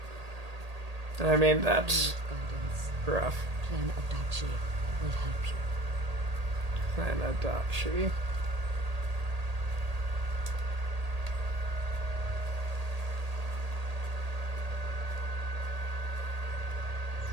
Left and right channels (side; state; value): left; late; 1.8 ms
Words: I mean, that's Guidance. rough. Clan Adachi will help you. Clan Adachi. Your